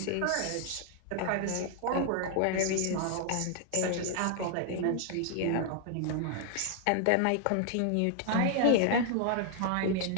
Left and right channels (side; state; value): both; different; correlation 0.00